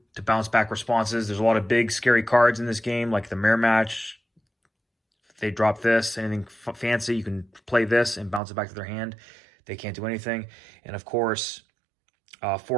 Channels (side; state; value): left; drops out; at 8.4 s